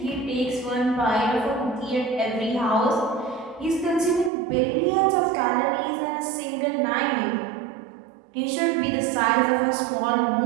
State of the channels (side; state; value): left; drops out; at 4.3 s